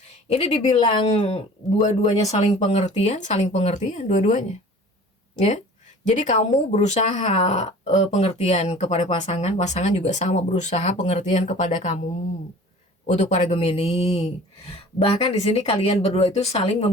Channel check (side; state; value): both; normal; correlation 0.45